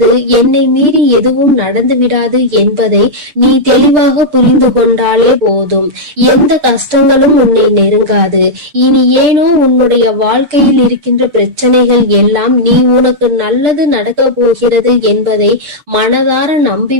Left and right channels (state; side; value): late; left; 6.7 ms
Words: என்னை மீறி எதுவும் நடந்து விடாது என்பதை நீ தெளிவாக புரிந்து கொண்டாலே போதும். எந்த கஷ்டங்களும் உன்னை நெருங்காது. இனி ஏனோ உன்னுடைய வாழ்க்கையில் இருக்கின்ற பிரச்சனைகள் எல்லாம் நீ உனக்கு நல்லது நடக்க போகிறது என்பதை மனதார